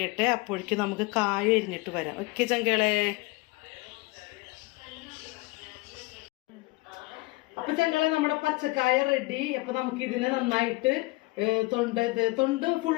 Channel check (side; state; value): right; quieter; 22.9 dB